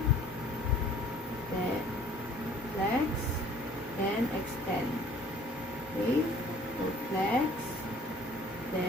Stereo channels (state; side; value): normal; both; correlation 0.53